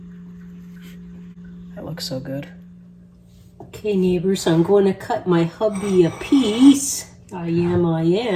That looks so good. Okay, neighbors, I'm going to cut my hubby a piece. I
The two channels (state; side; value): identical; both; correlation 1.00